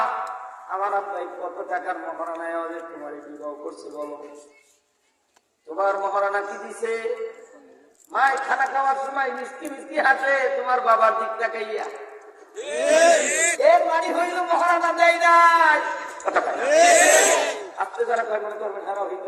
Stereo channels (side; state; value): both; identical; correlation 1.00